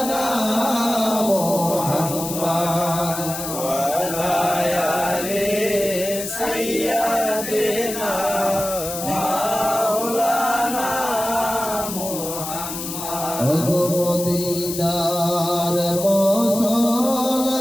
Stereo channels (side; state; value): left; noise; hiss, 7 dB below the sound